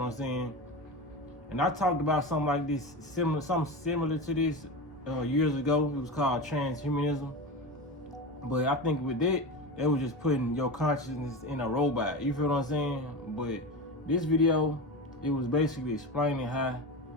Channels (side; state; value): both; normal; correlation 0.24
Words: I'm saying? And I talked about something like this, something similar to this years ago. It was called transhumanism. But I think with that, it was just putting your consciousness in a robot. You feel what I'm saying? But this video, it was basically explaining how